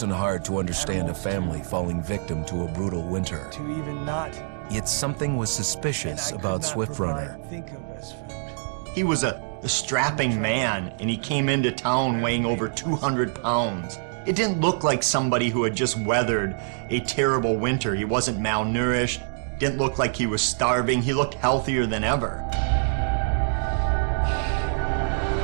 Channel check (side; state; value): left; silent; digital silence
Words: hard to understand a family falling victim to a brutal winter. To even not. Yet something was suspicious about Swift Runner. He was a strapping man, and he came into town weighing over 200 pounds. It didn't look like somebody who had just weathered a terrible winter. He wasn't malnourished, didn't look like he was starving. He looked healthier than ever.